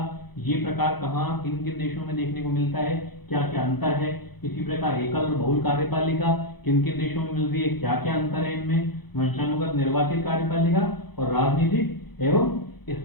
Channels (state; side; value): late; right; 0.98 ms